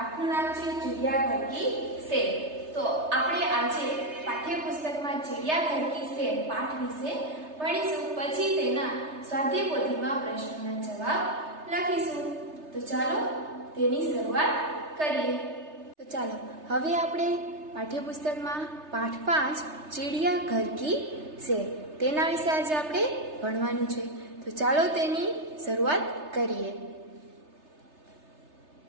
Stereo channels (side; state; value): left; late; 3.3 ms